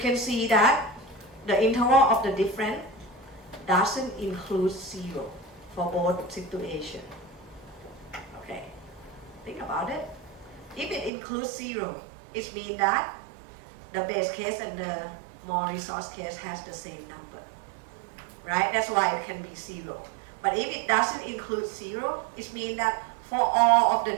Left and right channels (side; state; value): left; drops out; at 11.1 s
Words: see that the interval of the difference doesn't include zero for both situations. Okay, think about it. If it includes zero, it means that the base case and the more resource case has the same number, right? That's why it can be zero. But if it doesn't include zero, it means that for all of the